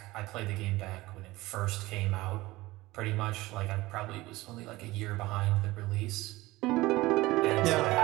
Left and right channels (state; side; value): quieter; left; 19.3 dB